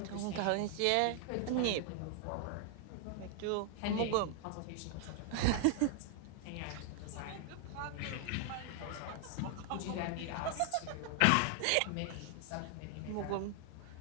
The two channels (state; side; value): different; both; correlation 0.00